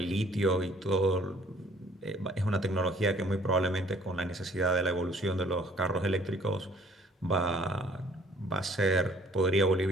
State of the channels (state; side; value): normal; both; correlation 0.58